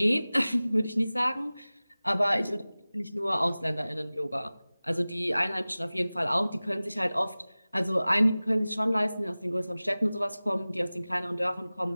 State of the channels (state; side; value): inverted; both; correlation -0.98